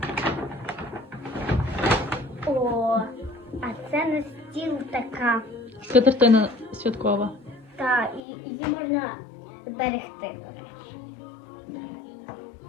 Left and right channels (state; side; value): drops out; right; at 8.2 s